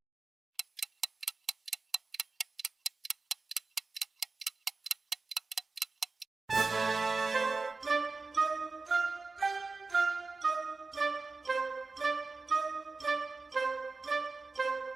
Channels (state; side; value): quieter; left; 3.9 dB